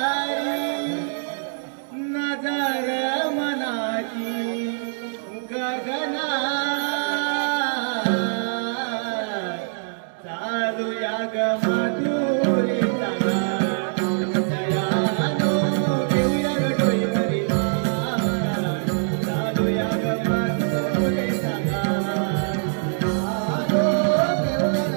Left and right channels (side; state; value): left; silent; digital silence